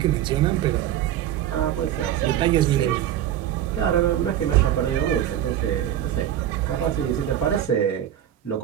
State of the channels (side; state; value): left; quieter; 11.2 dB